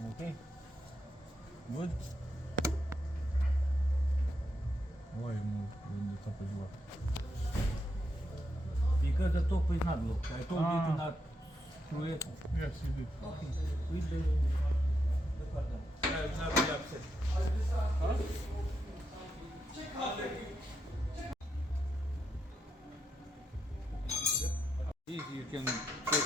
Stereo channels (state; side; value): normal; both; correlation 0.83